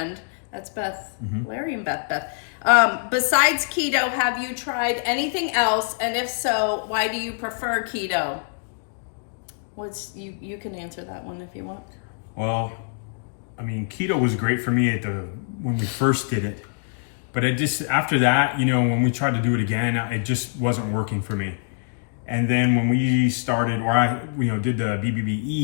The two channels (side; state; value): right; silent; digital silence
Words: that's Beth, Larry and Beth. Besides keto, have you tried anything else? And if so, why do you prefer keto? You can answer that one if you want. Well, I mean, keto was great for me when we first did it. But after that, when we tried to do it again, it just wasn't working for me. And then when we started, or I did the